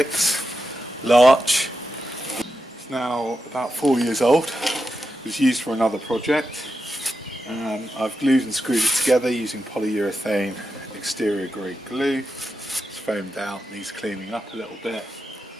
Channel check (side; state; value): both; normal; correlation 0.88